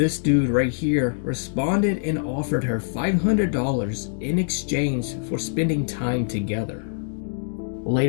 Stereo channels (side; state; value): right; silent; digital silence